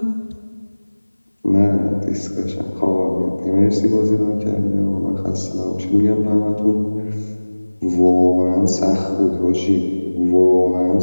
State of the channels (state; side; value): inverted; both; correlation -1.00